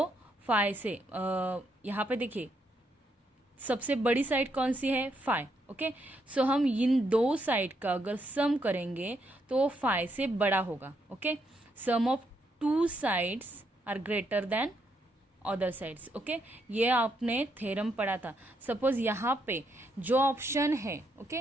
5 से, यहाँ पे देखिए सबसे बड़ी साइड कौन सी है, 5. ओके, सो हम इन दो साइड का अगर सम करेंगे तो वो 5 से बड़ा होगा. Okay, sum of two sides are greater than other sides. Okay, ये आपने थ्योरम पढ़ा था. सपोज यहाँ पे जो ऑप्शन है, ओके,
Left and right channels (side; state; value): both; normal; correlation 0.77